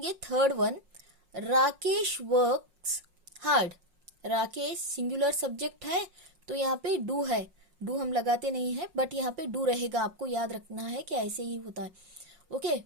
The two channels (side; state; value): left; late; 5.5 ms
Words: third one, Rakesh works hard. Rakesh singular subject है, तो यहाँ पे डू है, डू हम लगाते नहीं है, बट यहाँ पे डू रहेगा, आपको याद रखना है कि ऐसे ही होता है। ओके,